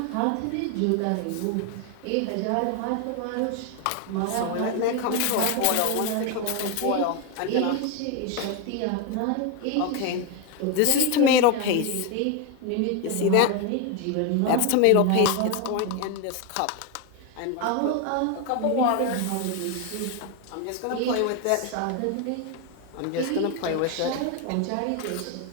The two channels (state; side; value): different; both; correlation 0.01